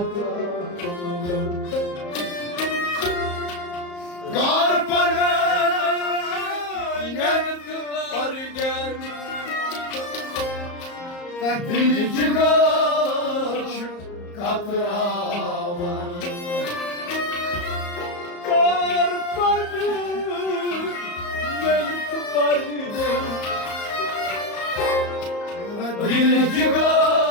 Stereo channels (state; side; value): late; right; 34 ms